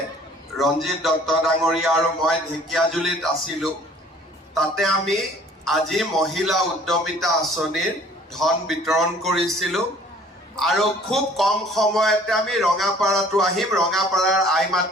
ৰঞ্জিত দত্ত ডাঙৰীয়া আৰু মই ঢেকীয়াজুলিত আছিলোঁ। তাতে আমি আজি মহিলা উদ্যমিতা আঁচনিৰ ধন বিতৰণ কৰিছিলোঁ আৰু খুব কম সময়তে আমি ৰঙাপাৰাতো আহিম। ৰঙাপাৰাৰ আই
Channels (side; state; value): both; normal; correlation 0.53